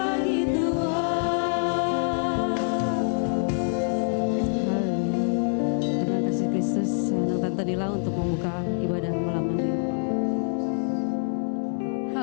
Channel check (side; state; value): right; silent; 61 dB below the other